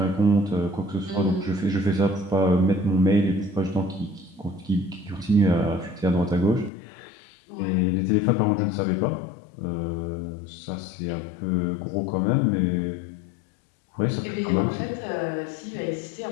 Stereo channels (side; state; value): right; drops out; at 6.7 s